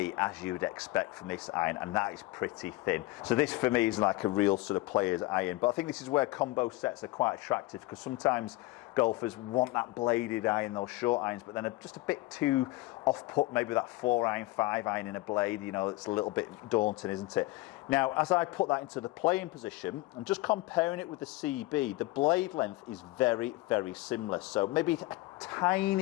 as you would expect from this iron, and that is pretty thin. So this for me is like a real sort of player's iron, but I think this is where combo sets are quite attractive, because sometimes golfers want that bladed iron, those short irons, but then are just a bit too off-put, maybe that 4-iron, 5-iron in a blade, you know, it's a little bit daunting, isn't it? Now, as I put that into the playing position, I'm just comparing it with the CB, the blade length is very, very similar. So maybe a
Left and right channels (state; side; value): quieter; right; 20.0 dB